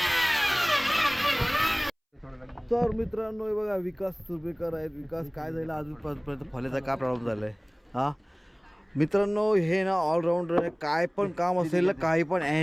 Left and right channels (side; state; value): both; identical; correlation 1.00